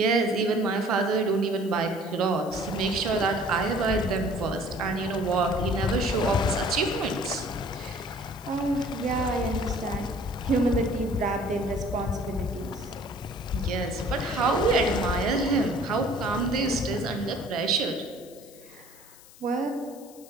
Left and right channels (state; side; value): noise; left; hiss, 22 dB below the sound